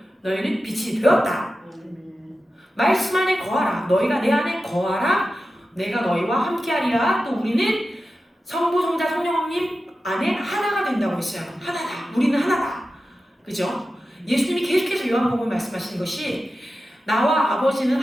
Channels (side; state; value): both; normal; correlation 0.92